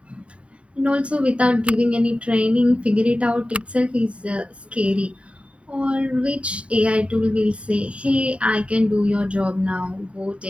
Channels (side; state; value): left; late; 0.061 ms